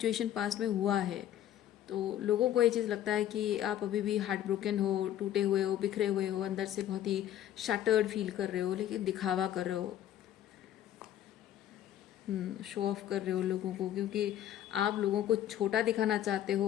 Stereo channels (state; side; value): quieter; right; 11.7 dB